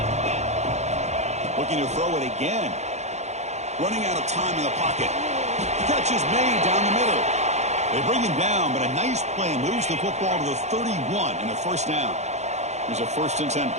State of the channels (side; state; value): left; late; 0.33 ms